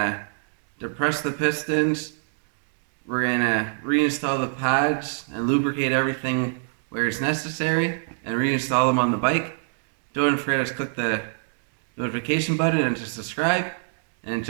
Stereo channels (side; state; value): left; silent; digital silence